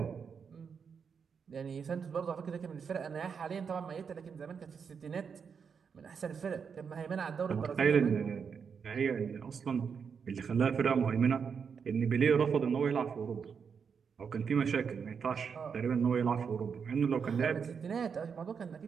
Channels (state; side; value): quieter; left; 6.4 dB